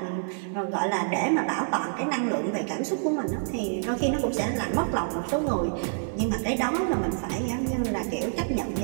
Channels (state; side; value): silent; left; digital silence